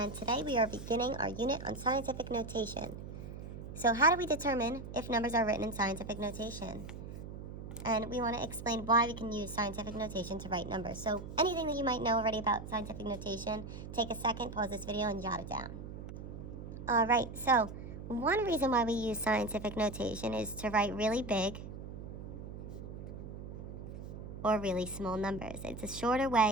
today we are beginning our unit on scientific notation. So how do we determine if numbers are written in scientific notation? And we want to explain why we can use scientific notation to write numbers. So anything that you might know already about scientific notation, take a second, pause this video, and jot it down. Alright, so one reason why we use scientific notation is to write really big or really small numbers. It's a shorter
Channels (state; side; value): noise; right; hum, 10 dB below the sound